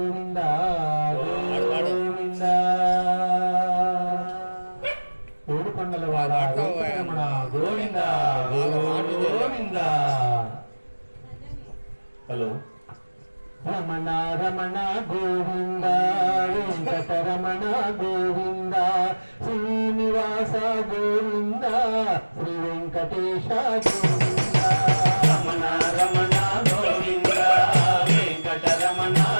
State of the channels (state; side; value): inverted; both; correlation -1.00